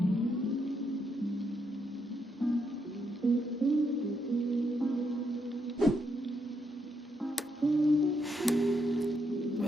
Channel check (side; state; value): both; normal; correlation 0.79